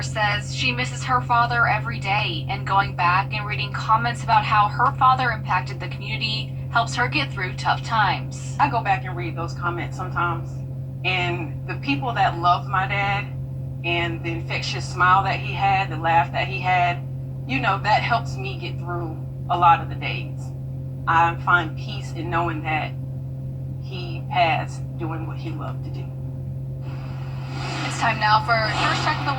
says she misses her father every day, and going back and reading comments about how her father impacted the community helps her get through tough times. I go back and read those comments sometimes, and the people that loved my dad and the infectious smile that he had, the laugh that he had, you know, that helps me get through a lot of the days. I find peace in knowing that he passed doing what he loved to do. It's time now for our first check of the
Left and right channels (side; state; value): both; identical; correlation 1.00